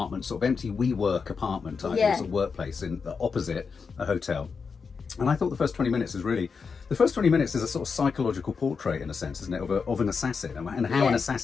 sort of empty WeWork apartment type, sort of workplace in the opposite a hotel. And I thought the first 20 minutes is a sort of psychological portrait, in a sense, isn't it, of an assassin and how an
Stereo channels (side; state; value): right; quieter; 5.4 dB